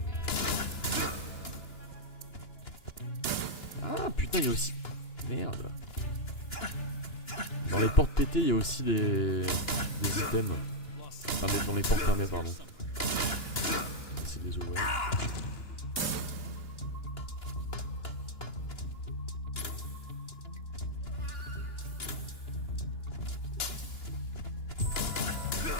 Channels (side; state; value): right; late; 2.9 ms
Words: Ah putain, il y a aussi... Merde. Dans les portes pétées, il y a aussi des items. Enfin, dans les portes fermées, pardon. C'est des ouvrir.